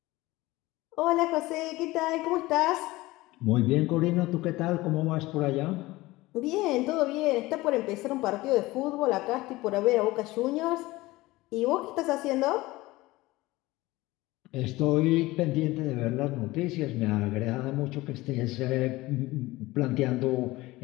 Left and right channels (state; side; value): quieter; right; 19.5 dB